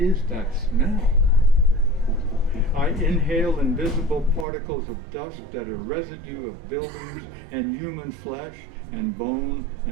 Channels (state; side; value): drops out; left; at 4.5 s